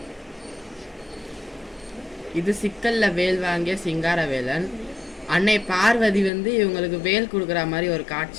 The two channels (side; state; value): right; drops out; at 6.3 s